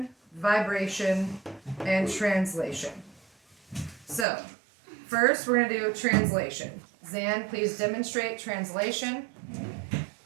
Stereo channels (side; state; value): left; drops out; at 4.2 s